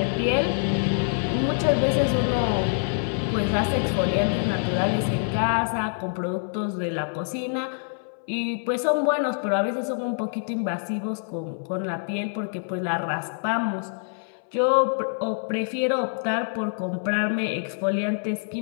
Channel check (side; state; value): right; silent; 61 dB below the other